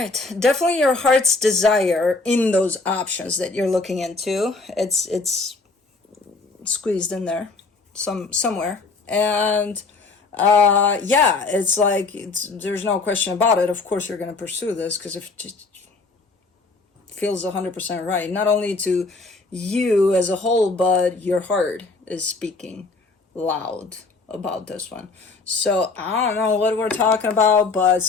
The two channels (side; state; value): right; quieter; 3.8 dB